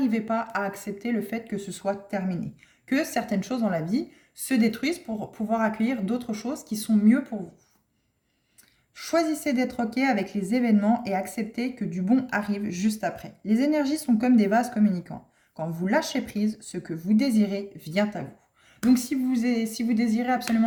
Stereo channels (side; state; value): both; identical; correlation 1.00